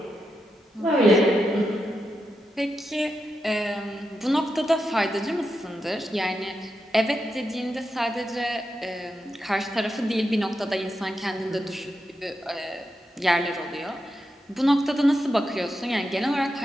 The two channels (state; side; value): normal; both; correlation 0.86